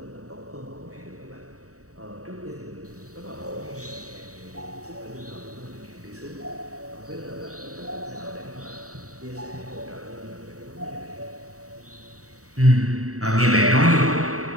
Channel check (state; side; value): late; left; 0.66 ms